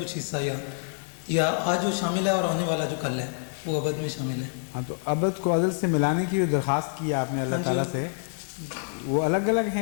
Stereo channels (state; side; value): silent; right; digital silence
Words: کچھ حصہ ہے, یا آج جو شامل ہے اور آنے والا جو کل ہے وہ ابد میں شامل ہے. ہاں, تو ابد کو ازل سے ملانے کی جو درخواست کی آپ نے اللہ تعالیٰ سے, وہ الگ الگ